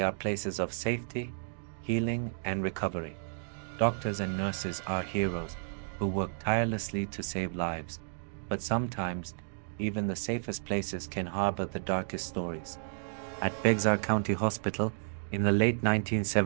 are places of safety, healing, and recovery. Doctors and nurses are heroes who work tirelessly to save lives, but sometimes even the safest places can harbor the darkest stories. At Bexar County Hospital, in the late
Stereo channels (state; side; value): silent; left; digital silence